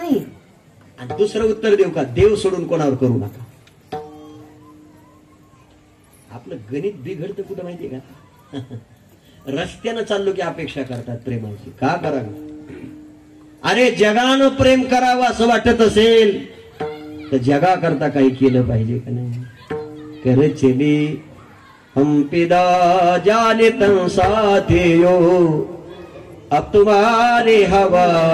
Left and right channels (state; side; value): identical; both; correlation 1.00